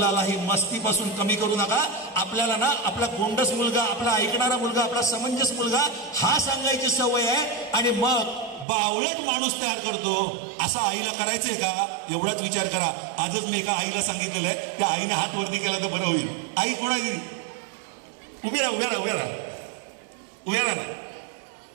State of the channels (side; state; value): left; drops out; at 8.7 s